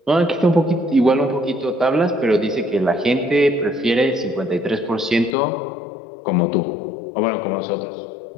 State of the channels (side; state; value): right; drops out; at 5.4 s